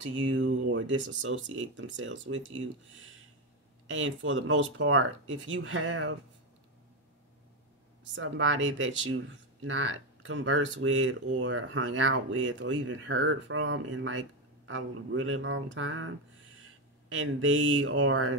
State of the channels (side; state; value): both; normal; correlation 0.10